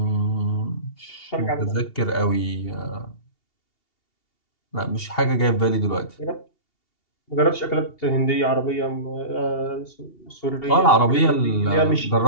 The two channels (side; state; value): right; late; 2.8 ms